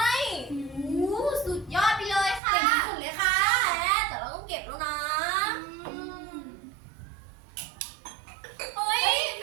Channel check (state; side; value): drops out; left; at 2.4 s